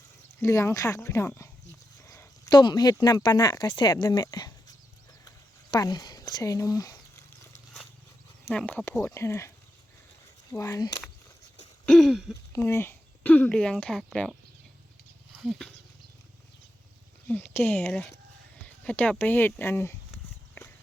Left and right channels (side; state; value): both; normal; correlation 0.87